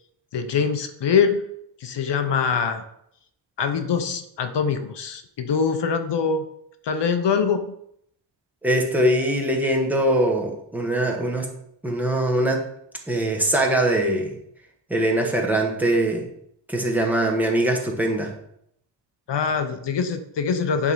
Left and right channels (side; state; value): both; normal; correlation 0.20